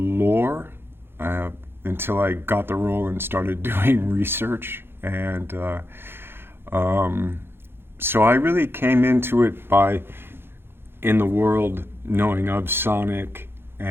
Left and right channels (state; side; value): late; left; 0.11 ms